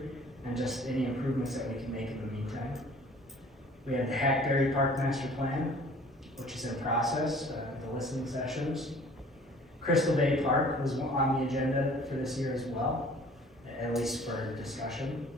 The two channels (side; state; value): both; normal; correlation 0.51